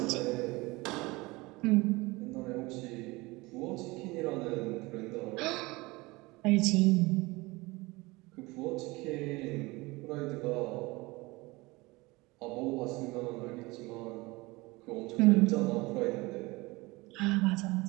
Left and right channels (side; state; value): left; quieter; 22.8 dB